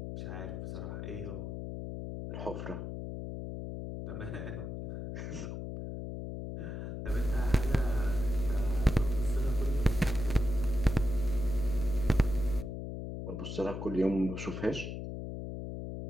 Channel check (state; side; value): noise; left; hum, 6 dB below the sound